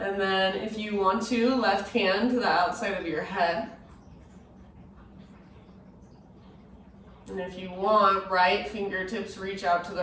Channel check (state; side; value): identical; both; correlation 1.00